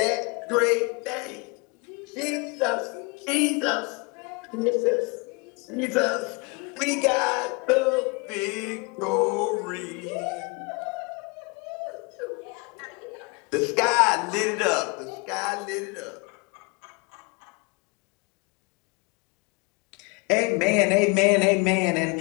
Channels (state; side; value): quieter; right; 30.0 dB